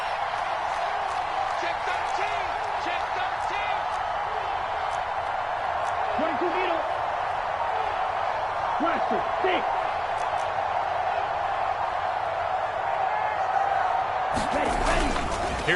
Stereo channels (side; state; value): both; identical; correlation 1.00